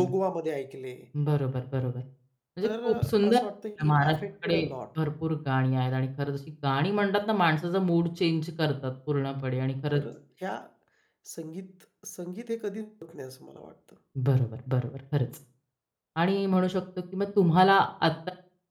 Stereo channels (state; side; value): identical; both; correlation 1.00